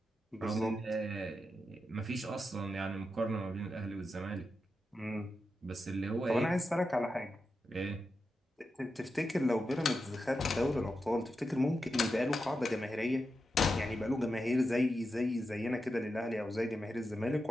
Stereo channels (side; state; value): both; normal; correlation 0.88